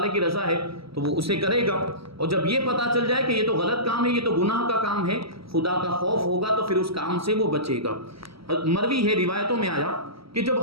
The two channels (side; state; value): left; late; 0.75 ms